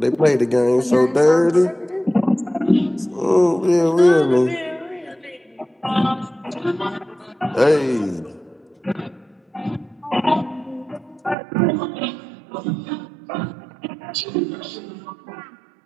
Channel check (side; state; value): left; drops out; at 11.4 s